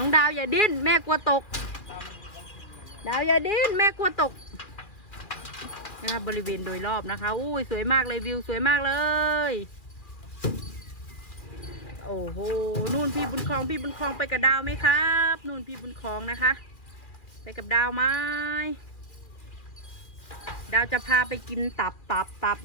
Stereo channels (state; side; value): late; right; 2.4 ms